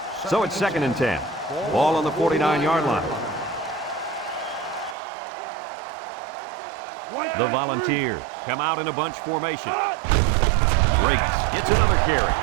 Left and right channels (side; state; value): left; drops out; at 5.0 s